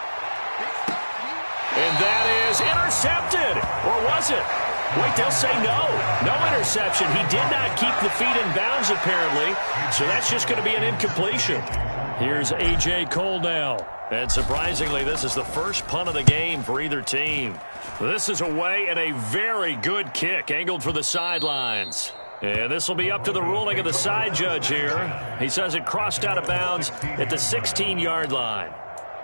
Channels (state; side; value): inverted; both; correlation -1.00